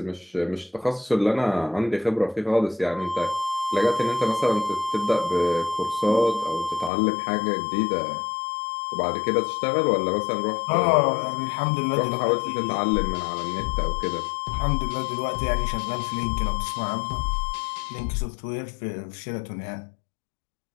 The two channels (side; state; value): right; drops out; at 6.9 s